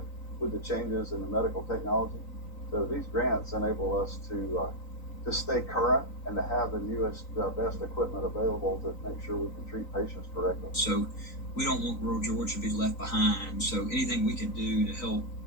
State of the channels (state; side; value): late; right; 3.9 ms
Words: changes in the medical technology. So these grants enable us to stay current and to have the newest, best equipment available to make sure we can treat patients correctly. So we don't want rural Georgia to be left behind. So anything we can do to help,